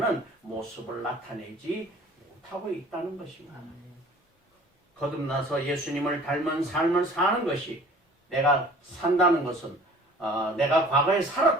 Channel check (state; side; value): normal; both; correlation 0.49